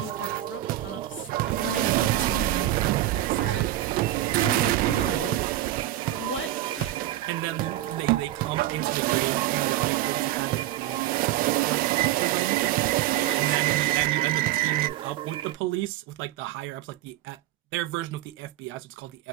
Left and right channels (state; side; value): quieter; left; 14.0 dB